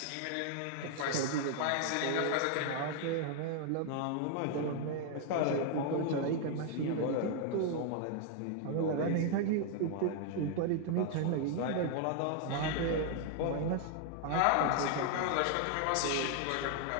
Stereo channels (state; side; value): different; both; correlation 0.00